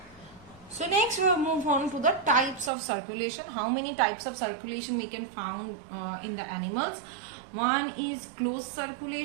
So next we will move on to the types of circulation. How many types of circulation we can find in the animals? One is closed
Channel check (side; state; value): left; drops out; at 2.7 s